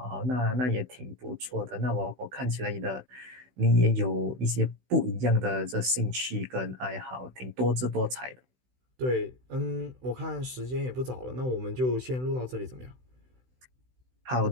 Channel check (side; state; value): left; late; 16 ms